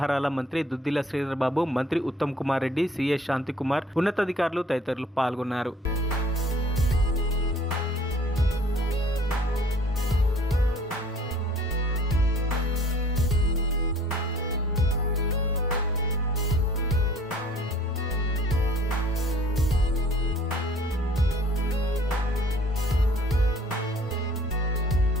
మంత్రి దుద్దిల శ్రీధర్ బాబు, మంత్రి ఉత్తమ్ కుమార్ రెడ్డి, సిఏ శాంతికుమార్, ఉన్నతాధికారులు తదితరులు పాల్గొన్నారు.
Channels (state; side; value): normal; both; correlation 0.54